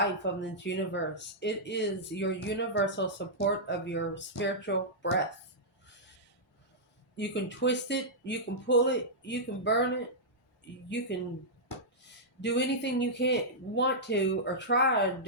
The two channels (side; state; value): both; normal; correlation -0.11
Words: of this universe. It is your universal support of your spiritual breath. You can twist it, you can pull it, you can burn it, you can do anything you can't want to or try to